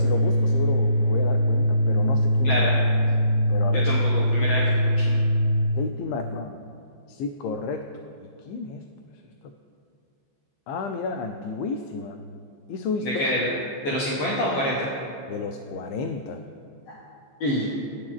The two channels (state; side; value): late; right; 14 ms